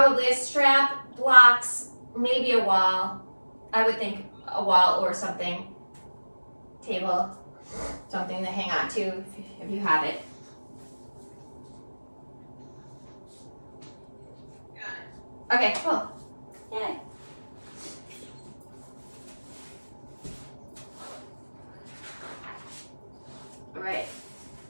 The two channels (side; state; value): both; inverted; correlation -1.00